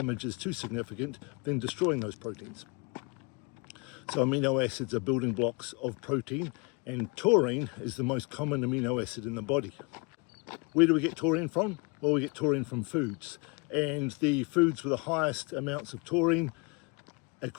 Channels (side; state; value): right; quieter; 30.0 dB